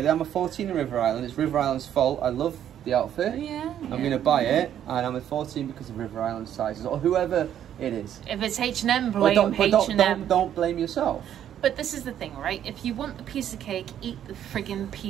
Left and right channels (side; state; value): left; quieter; 10.3 dB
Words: I'm a 14 in River Island. It's River Island's fault. I love the outfit. I'm going to buy it, and I'm a 14 because of River Island sizes, or whoever it is. If it's H&M, blame H&M. Don't blame yourself. But this is the thing, right? If you want a piece of cake, eat the friggin'